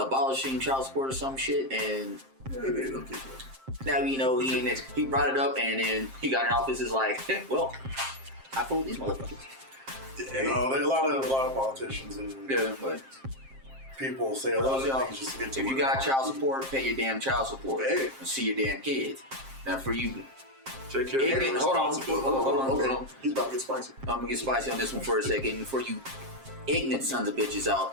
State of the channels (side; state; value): left; late; 7.5 ms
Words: child support or some shit? And Yeah, they don't keep that. now he brought it up, and then he got in office. Is like, well, I fooled these motherfuckers. You know, there are a lot of politicians and Yeah, but people say a lot of things just to get to if you got child support, pay your damn child support Hey. and see your damn kids. Now for you, Take care of your hold on. responsibility. He's about to get spicy. I'm gonna get spicy on this one for a second. For you ignorant sons of bitches out